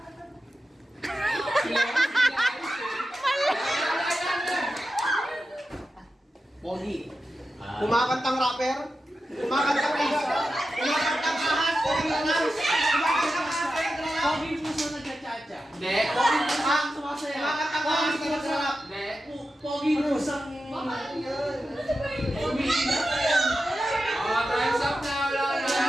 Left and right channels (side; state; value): both; normal; correlation 0.91